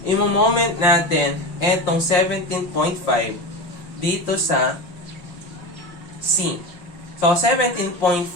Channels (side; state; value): right; late; 5.7 ms